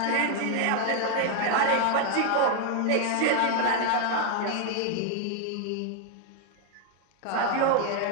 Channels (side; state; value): both; different; correlation 0.00